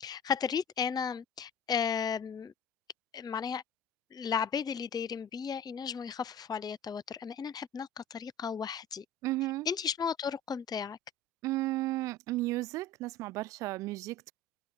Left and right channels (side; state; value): both; normal; correlation 0.36